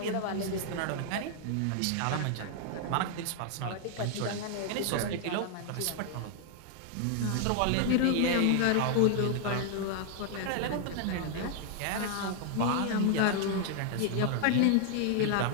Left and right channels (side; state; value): both; different; correlation 0.00